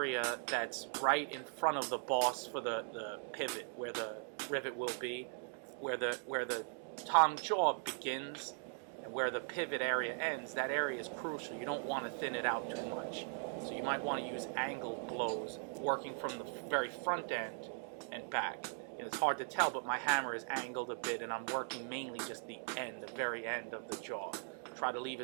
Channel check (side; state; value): left; silent; 51 dB below the other